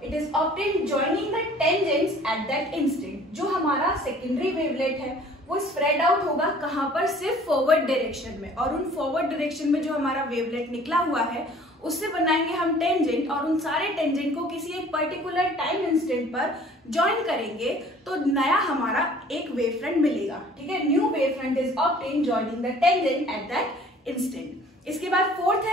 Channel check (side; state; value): both; normal; correlation 0.51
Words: it is obtained joining the tangents at that instant. जो हमारा सेकेंडरी वेवलेट है वो स्प्रेड आउट होगा कहां पर? सिर्फ फॉरवर्ड डायरेक्शन में, और उन फॉरवर्ड डायरेक्शन में जो हमारा वेवलेट निकला हुआ है उससे बनाएंगे हम टेंजेंट, और उन सारे टेंजेंट को किसी एक पर्टिकुलर टाइम इंस्टेंट पर ज्वाइन करेंगे तो नया हमारा एक वेव फ्रंट मिलेगा। ठीक है, new wave front is obtained joining the tangent at that instant. इसके बाद फोर्थ है